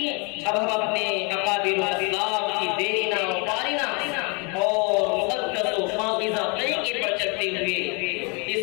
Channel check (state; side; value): quieter; right; 32.2 dB